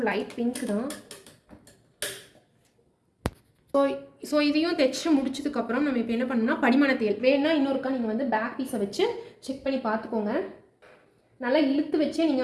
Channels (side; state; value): both; identical; correlation 1.00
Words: லைட் பிங்க் தான். ஸோ இதையும் தைச்சி முடிச்சதுக்கப்புறம் நம்ம இப்போ என்ன பண்ணணும்னா படிமான தையல் வேணும்னா இன்னொருக்கா நீங்கள் வந்து பேக் பீஸை வச்சு செக் பண்ணி பார்த்துக்கோங்க. நல்லா இழுத்து வச்சே